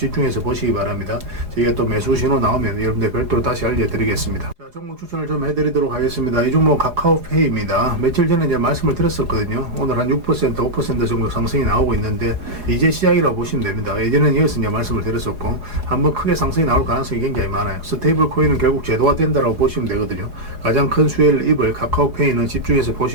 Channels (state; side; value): late; left; 4.9 ms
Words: 보시기 바랍니다. 저희가 또 매수 신호 나오면 여러분들 별도로 다시 알려드리겠습니다. 자, 종목 추천을 좀 해드리도록 하겠습니다. 이 종목 카카오페이입니다. 며칠 전에 이제 말씀을 드렸었거든요. 오늘 한 6%, 5% 정도 상승이 나오고 있는데 이제 시작이라고 보시면 됩니다. 예전에는 이어서 이제 말씀을 드렸었고 한번 크게 상승이 나올 가능성이 굉장히 많아요. 스테이블 코인은 결국 제도화 된다라고 보시면 되거든요. 가장 큰 수혜를 입을 카카오페이는 집중해서